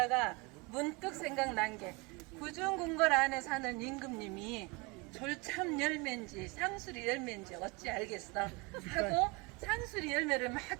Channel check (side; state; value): left; quieter; 26.8 dB